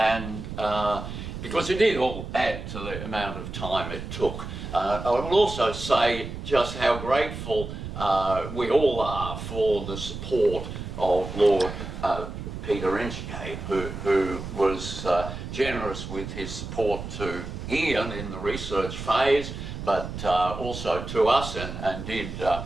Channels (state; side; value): noise; right; rumble, 8 dB below the sound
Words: because it did all add to the amount of time it took. I will also say just how grateful we all are for the support of Lord Peter Inchcape, who was generous with his support to Ian in the research phase, but also to us, and did